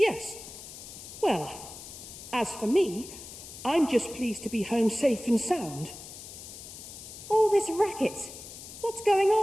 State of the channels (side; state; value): left; noise; hiss, 13 dB below the sound